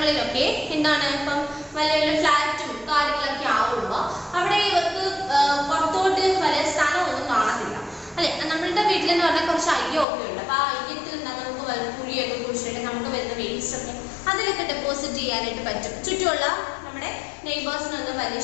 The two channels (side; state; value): right; drops out; at 10.1 s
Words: എന്താണ് ഇപ്പം വലിയ വലിയ ഫ്ലാറ്റും കാര്യങ്ങളൊക്കെ ആവുമ്പോൾ അവിടെ ഇവർക്ക് പുറത്തോട്ട് വലിയ സ്ഥലമൊന്നും കാണത്തില്ല അല്ലെ. നമ്മളുടെ വീട്ടിലെന്ന് പറഞ്ഞാൽ കുറച്ച് അയ്യൊക്കെ ഉണ്ട്. അപ്പൊ ആ അയ്യത്തിൽ എന്താ നമുക്ക് കുഴിയൊക്കെ കുഴിച്ചിട്ട് നമുക്ക് വരുന്ന വേസ്റ്റ് ഒക്കെ അതിലൊക്കെ ഡെപ്പോസിറ്റ് ചെയ്യാനായിട്ട് പറ്റും. ചുറ്റുമുള്ള നമ്മുടെ നെയ്ബേഴ്സിനൊന്നും വലിയ